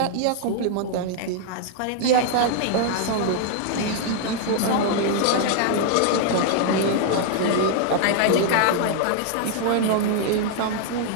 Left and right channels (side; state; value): both; different; correlation 0.00